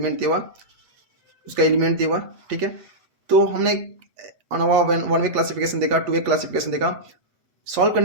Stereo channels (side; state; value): left; late; 8.4 ms